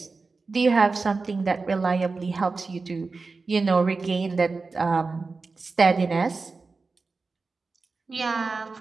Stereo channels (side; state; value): left; quieter; 4.1 dB